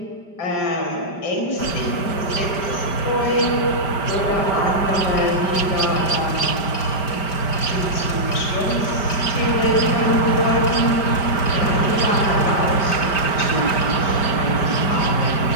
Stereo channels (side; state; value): right; late; 5.1 ms